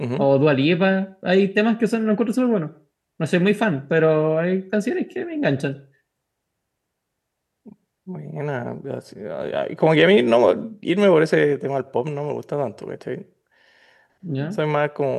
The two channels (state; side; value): identical; both; correlation 1.00